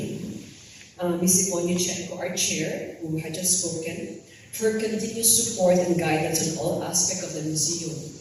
Ms. Yvonne Yuchenko, our chair, who had just spoken, for her continuous support and guidance on all aspects of the museum,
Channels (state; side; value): identical; both; correlation 1.00